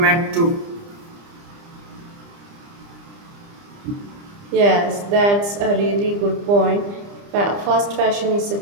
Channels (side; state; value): left; late; 30 ms